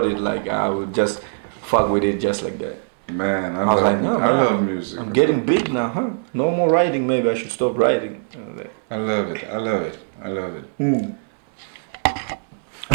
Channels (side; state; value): left; silent; digital silence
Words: it, like I would just fuck with it just like that. Man, I was love like, no, I man, love music. I'm getting big now, huh? No more writing, maybe I should stop writing. I love it. I love it. I love it.